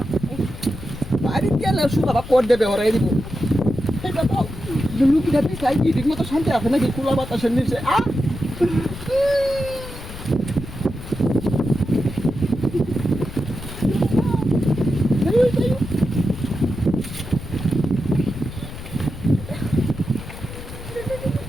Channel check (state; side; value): noise; left; rumble, 11 dB below the sound